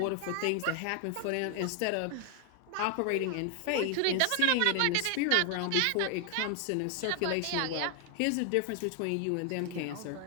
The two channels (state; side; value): different; both; correlation 0.00